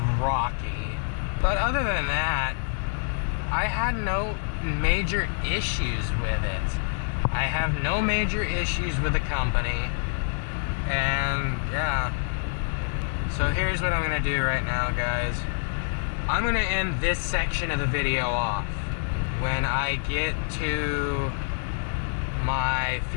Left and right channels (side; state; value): right; silent; 61 dB below the other